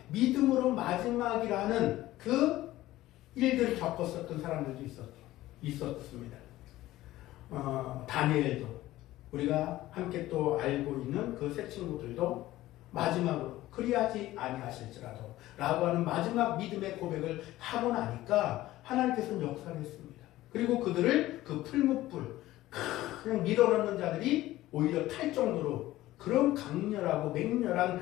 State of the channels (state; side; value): quieter; right; 16.0 dB